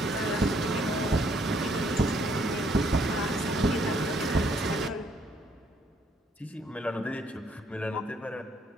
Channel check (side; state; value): both; normal; correlation 0.68